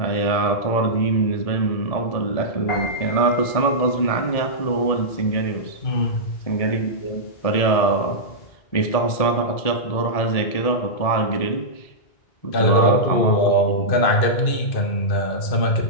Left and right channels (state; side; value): late; right; 1.7 ms